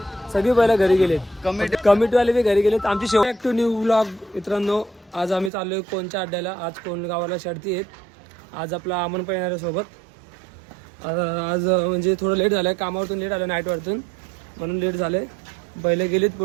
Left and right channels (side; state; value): left; drops out; at 5.5 s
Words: सगळी पहिला घरी गेलेत, कमिटीवाले बी घरी गेलेत. आमची शेवट ॲक्टिव्ह न्यू व्लॉग. मित्रांनो, आज आम्ही चाललोय कोणच्या अड्ड्याला. आज कोणगावाला शर्ती आहेत. आज आपला अमन पण येणार आहे सोबत. आज म्हणजे थोडं लेट झालंय, कामावरतून लेट आलं, नाईटवरतून, म्हणून लेट झालंय. बैलं गेलीत